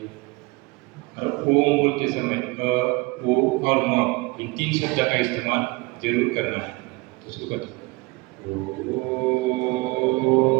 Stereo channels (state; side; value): quieter; left; 24.8 dB